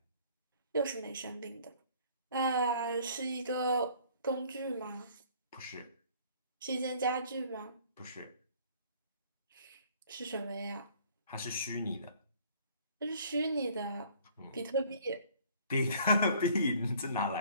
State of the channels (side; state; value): both; inverted; correlation -0.56